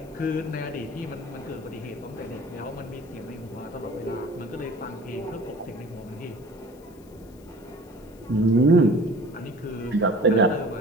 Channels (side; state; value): left; noise; hiss, 28 dB below the sound